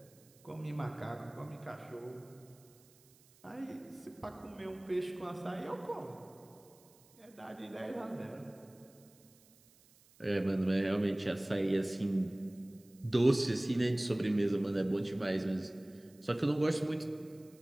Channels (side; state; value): right; noise; hiss, 28 dB below the sound